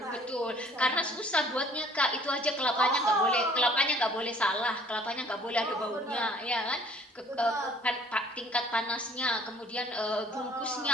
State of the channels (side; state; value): both; normal; correlation 0.55